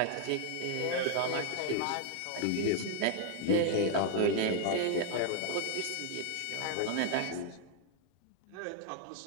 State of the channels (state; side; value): different; both; correlation 0.00